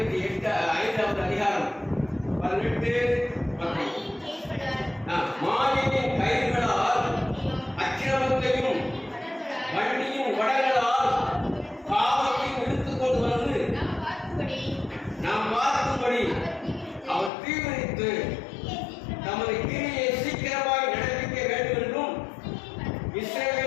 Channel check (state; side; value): drops out; right; at 17.3 s